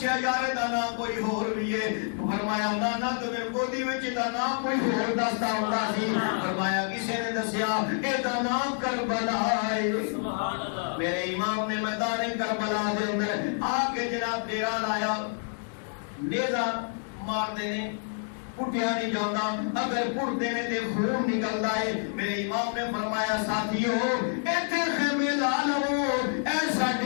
یار دا نام کوئی اور بھی ہے فرمایا نانا تو میرے گودی وچ دا نام کوئی اور دستا ہوتا سی فرمایا کسی نے دسیا اے دا نام کربلا ہے سبحان اللہ میرے امام نے میدان کربلا دے اندر آ کے جناب ڈیرا لایا نیزہ مار دینے پٹھیا نہیں جاندا اگر پٹ دینے دے خون نکلدا ہے میرے امام نے فرمایا ساتھیو ایتھے خیمے لا لو اے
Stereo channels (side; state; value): right; silent; 59 dB below the other